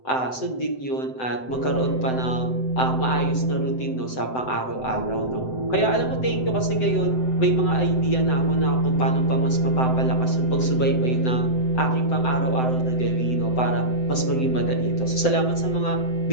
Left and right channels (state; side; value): late; right; 7.8 ms